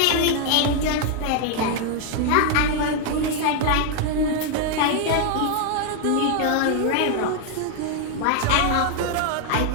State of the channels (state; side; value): different; both; correlation 0.00